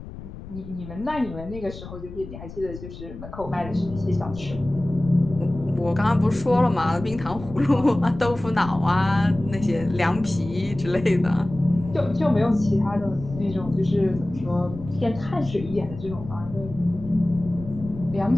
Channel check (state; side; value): noise; left; rumble, 13 dB below the sound